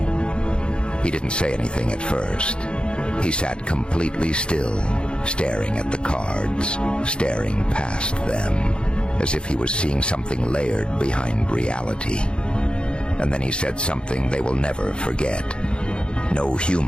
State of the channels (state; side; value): late; right; 0.054 ms